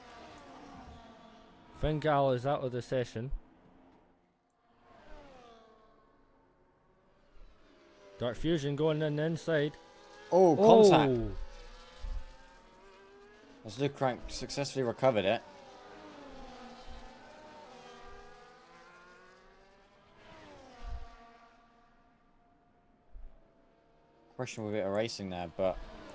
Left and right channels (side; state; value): both; identical; correlation 1.00